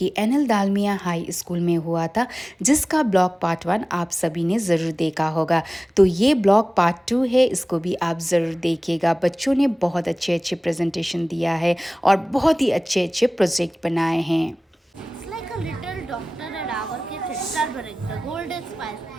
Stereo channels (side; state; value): both; normal; correlation 0.98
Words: एनएल दालमिया हाई स्कूल में हुआ था, जिसका ब्लॉग पार्ट 1 आप सभी ने ज़रूर देखा होगा। तो ये ब्लॉग पार्ट 2 है, इसको भी आप ज़रूर देखिएगा। बच्चों ने बहुत अच्छे अच्छे प्रेजेंटेशन दिया है और बहुत ही अच्छे अच्छे प्रोजेक्ट बनाए हैं। Like a little doctor at our kitchen. Turmeric, the golden spice.